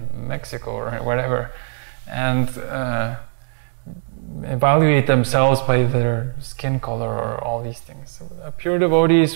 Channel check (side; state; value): left; silent; digital silence